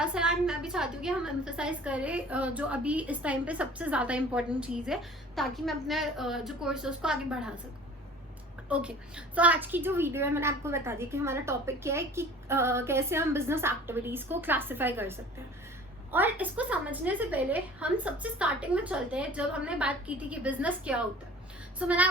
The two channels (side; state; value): both; normal; correlation 0.46